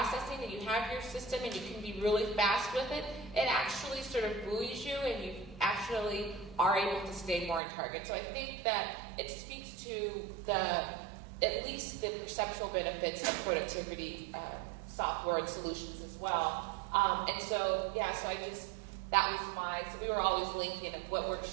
and you have your system and you can be really fast with it, it actually sort of buoys you and you actually are able to stay more on target. So I think that it speaks to at least the perceptual benefits of productivity software and solutions as well. And so, that was so we were always linking of what work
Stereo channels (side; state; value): left; drops out; at 7.6 s